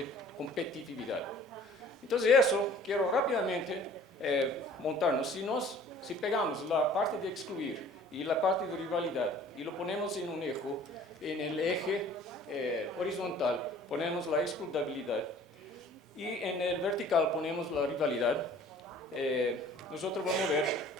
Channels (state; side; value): normal; both; correlation 0.50